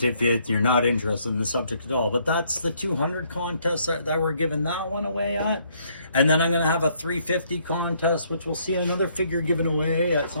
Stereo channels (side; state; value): both; inverted; correlation -0.69